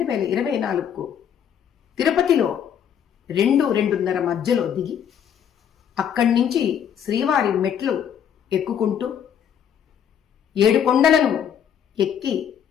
తిరుపతిలో 2-2:30 మధ్యలో దిగి అక్కడి నుంచి శ్రీవారి మెట్లు ఎక్కుకుంటూ 7 కొండలను ఎక్కి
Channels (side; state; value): right; quieter; 8.7 dB